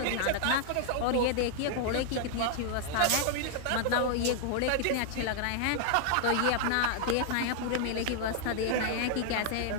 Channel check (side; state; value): both; different; correlation -0.01